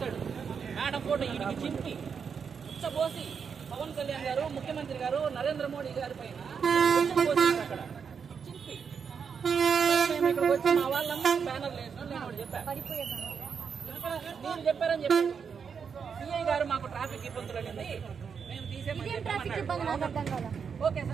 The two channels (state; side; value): quieter; left; 6.4 dB